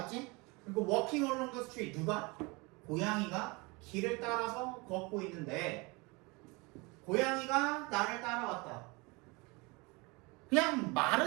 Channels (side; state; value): left; quieter; 26.6 dB